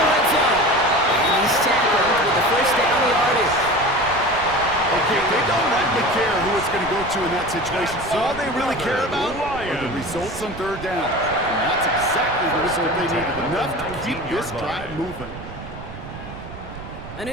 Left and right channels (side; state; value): right; noise; rumble, 13 dB below the sound